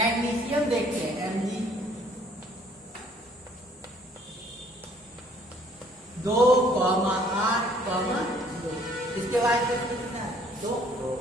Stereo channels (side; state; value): both; normal; correlation 0.60